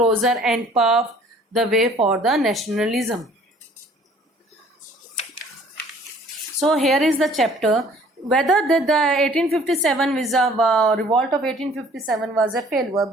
and paved the way for the nationalism. So here is the chapter. Whether the 1857 revolt of 1857 was a failure,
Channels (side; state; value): both; normal; correlation 0.55